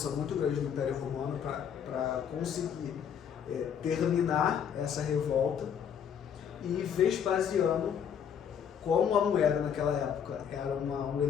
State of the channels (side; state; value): right; quieter; 8.1 dB